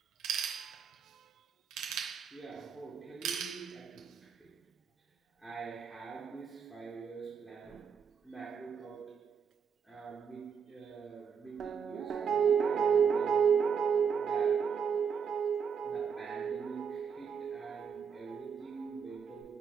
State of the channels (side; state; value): left; quieter; 6.7 dB